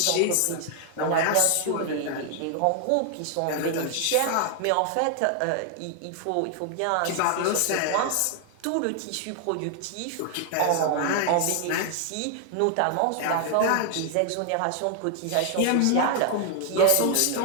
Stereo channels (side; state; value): both; different; correlation 0.00